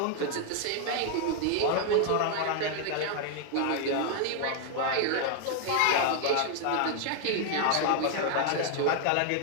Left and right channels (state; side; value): different; both; correlation 0.00